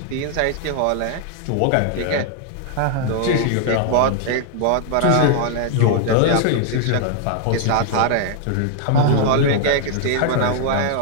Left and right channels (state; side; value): different; both; correlation 0.00